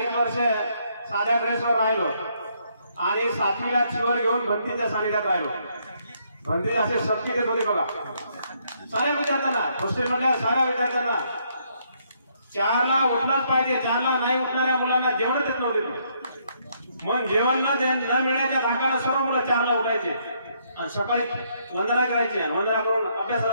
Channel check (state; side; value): inverted; both; correlation -0.71